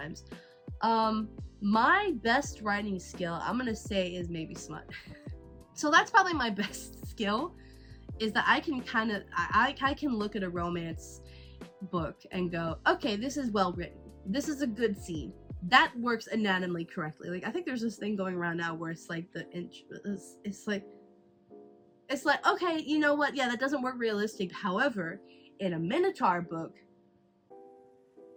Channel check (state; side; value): identical; both; correlation 1.00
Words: my best writing skill, I'm gonna say, is maybe smut. So that's probably my best skill, is that I can kind of, I can look at a romance book and go, okay, this is well written. This is a good scene. That works anatomically correctly. Like, I think there's this thing going around now where it's like it's like, okay, you know what? Yeah, that doesn't work realistic. However, in a Minotaur book,